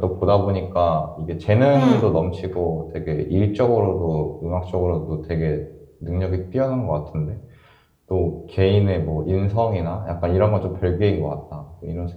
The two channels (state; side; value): identical; both; correlation 1.00